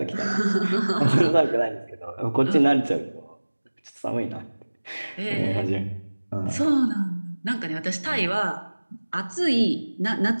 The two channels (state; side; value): inverted; both; correlation -1.00